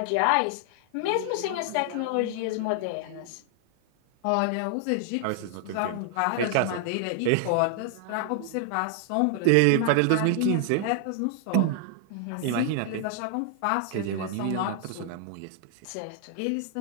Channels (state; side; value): different; both; correlation 0.00